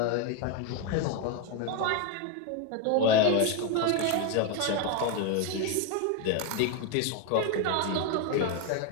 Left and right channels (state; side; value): different; both; correlation 0.02